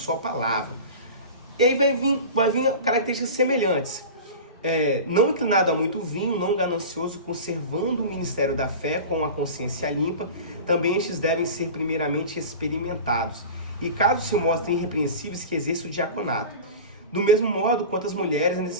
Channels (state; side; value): inverted; both; correlation -0.32